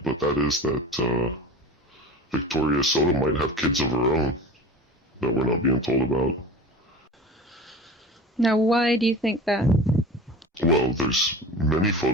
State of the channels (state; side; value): normal; both; correlation 0.36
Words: but that is that Victoria Soto might have kids of her own that we're not being told about. Now, why do you think that? Well, there's many